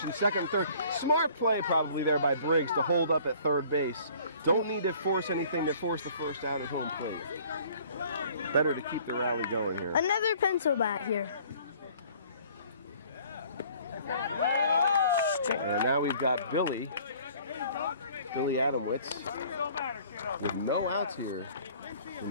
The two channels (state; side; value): inverted; both; correlation -0.54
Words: second and third. Smart play probably there by Briggs to hold up at third base. Don't need to force anything to force the first out at home plate. Better to keep the rally going here. Another pencil bat here. And now we've got Billy Adamwitz with no outs here in